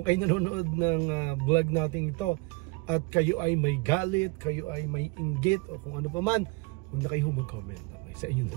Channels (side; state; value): left; quieter; 25.9 dB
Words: kayo nanonood ng vlog natin ito at kayo ay may galit, kayo ay may inggit o kung ano pa man, huwag na kayo mag-comment. Okay, sa inyo na